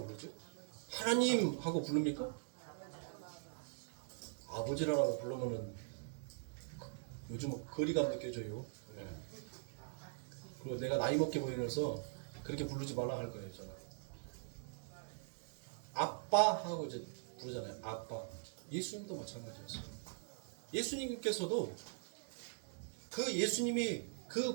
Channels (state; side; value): silent; left; digital silence